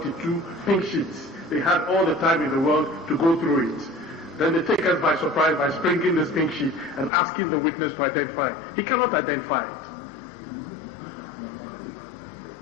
pink sheets. They had all the time in the world to go through it. Then they take us by surprise by sprinkling this pink sheet and asking the witness to identify it. He cannot identify it.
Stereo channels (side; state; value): right; drops out; at 7.1 s